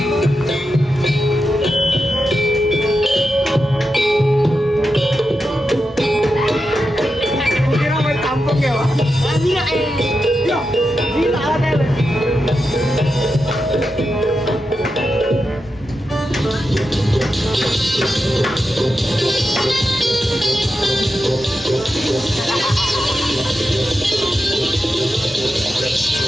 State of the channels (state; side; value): normal; both; correlation 0.89